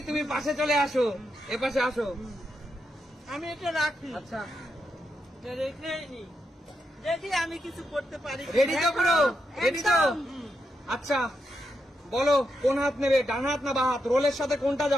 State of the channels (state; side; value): normal; both; correlation 0.84